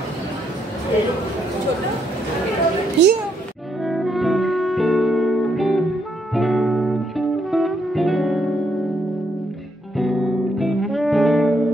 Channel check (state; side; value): normal; both; correlation 0.75